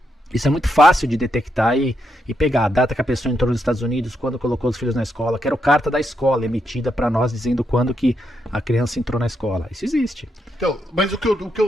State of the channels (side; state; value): both; normal; correlation 0.81